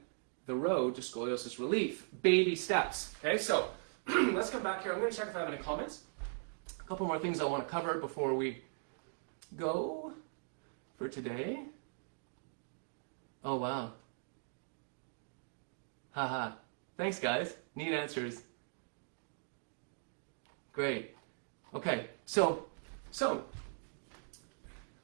the road to scoliosis relief. Baby steps. Okay, so let's come back here. I'm going to check if I have any comments. A couple more things I want to cover before we go for today. Oh, wow. Haha. Thanks, guys. Neat answers. Great. Okay, so, I have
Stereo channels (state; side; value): silent; left; digital silence